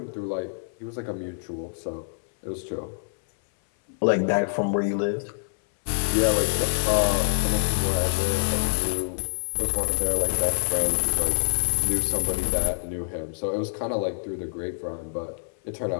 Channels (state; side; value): silent; right; 62 dB below the other